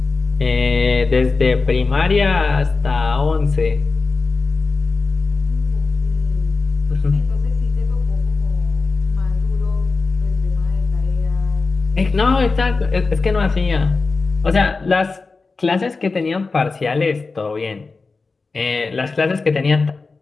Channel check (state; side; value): quieter; right; 4.1 dB